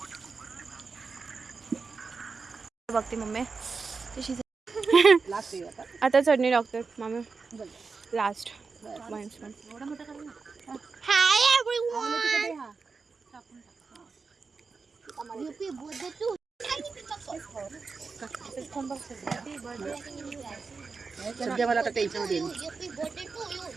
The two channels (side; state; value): left; quieter; 4.6 dB